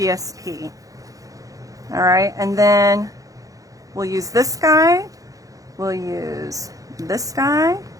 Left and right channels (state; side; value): late; left; 0.17 ms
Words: All right, and then we'll use this guy. We'll use this guy.